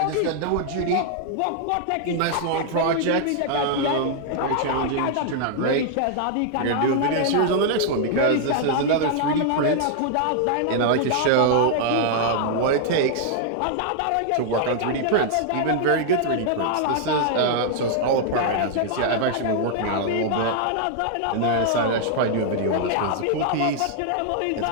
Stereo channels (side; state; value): both; different; correlation -0.01